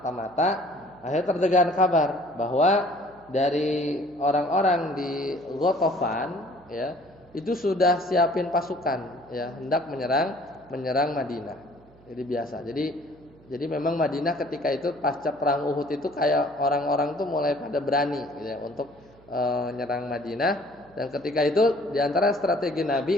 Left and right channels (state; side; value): noise; right; hum, 27 dB below the sound